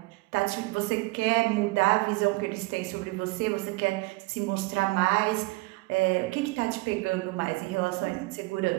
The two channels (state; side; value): quieter; left; 23.2 dB